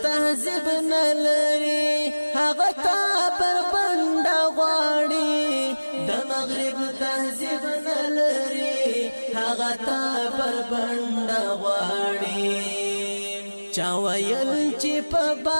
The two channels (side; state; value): both; inverted; correlation -1.00